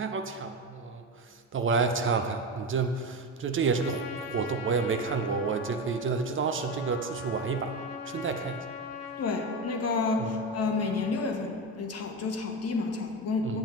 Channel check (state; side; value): normal; both; correlation 0.19